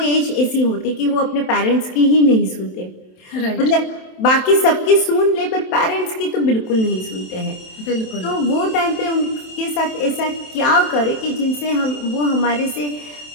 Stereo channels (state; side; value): late; right; 27 ms